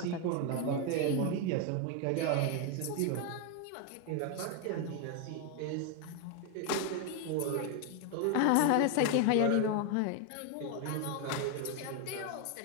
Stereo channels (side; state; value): both; different; correlation 0.01